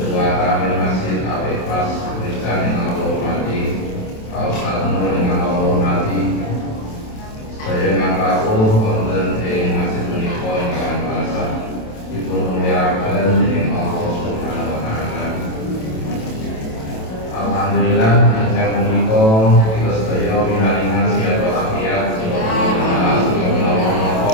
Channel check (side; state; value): right; late; 27 ms